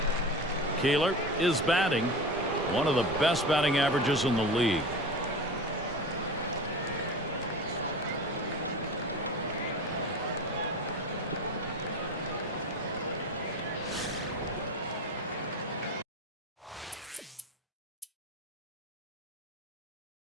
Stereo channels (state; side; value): normal; both; correlation 0.30